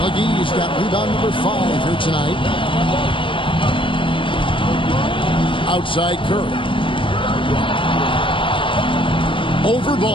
McGee's got rebound number 5 here tonight. Outside Curry. Over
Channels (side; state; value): right; late; 0.25 ms